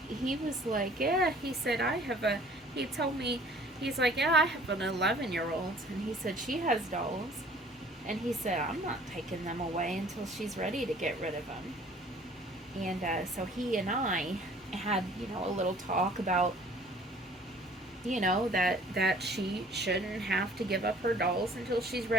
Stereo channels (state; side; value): normal; both; correlation 0.53